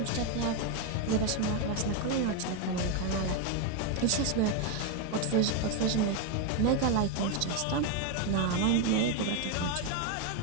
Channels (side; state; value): both; different; correlation 0.02